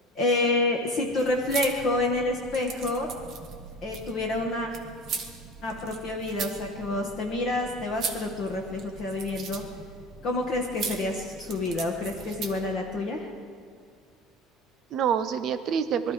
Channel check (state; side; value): normal; both; correlation 0.37